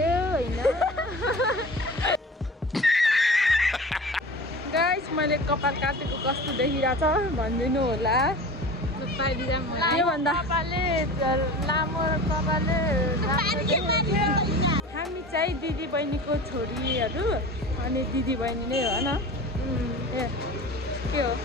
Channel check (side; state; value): both; normal; correlation 0.36